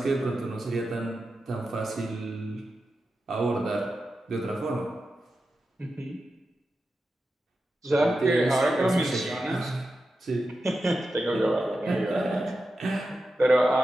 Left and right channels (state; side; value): normal; both; correlation 0.90